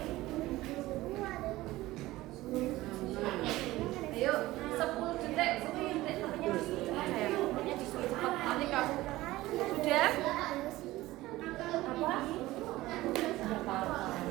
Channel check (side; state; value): left; quieter; 17.7 dB